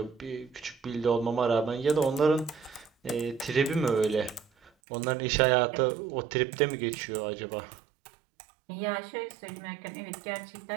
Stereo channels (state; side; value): drops out; left; at 4.7 s